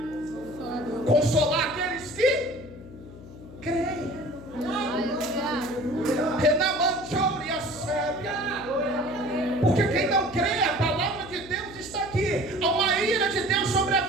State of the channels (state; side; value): noise; left; hum, 17 dB below the sound